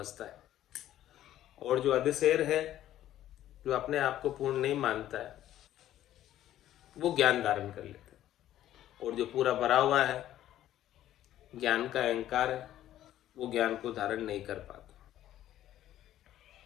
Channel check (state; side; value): quieter; right; 12.7 dB